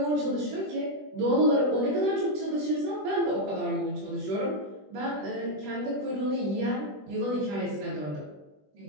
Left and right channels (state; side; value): late; left; 20 ms